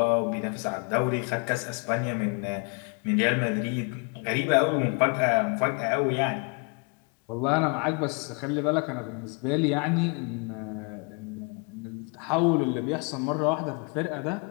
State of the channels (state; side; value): quieter; right; 35.7 dB